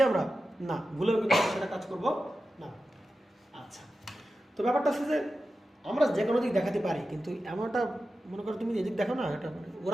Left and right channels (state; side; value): normal; both; correlation 0.92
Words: আমরা না, ভুলেও কিন্তু আমরা সেটা কাজ করব না। আচ্ছা, তো ব্যাপারটা হচ্ছে যে আমরা যে কোনো দিক দেখাতে পারি, কিন্তু এমনটা মনে করো তুমি এদিক দেখো না, এটা মানে